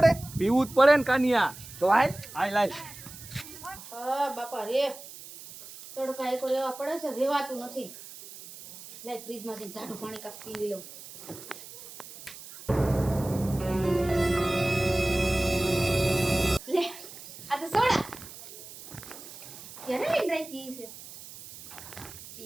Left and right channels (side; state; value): right; noise; hiss, 15 dB below the sound